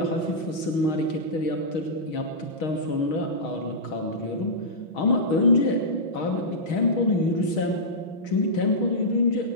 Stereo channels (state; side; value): late; right; 6.3 ms